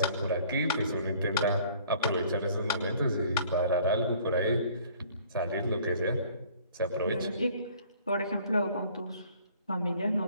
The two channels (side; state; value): both; inverted; correlation -0.55